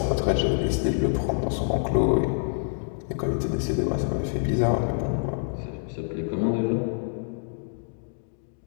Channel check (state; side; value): silent; right; digital silence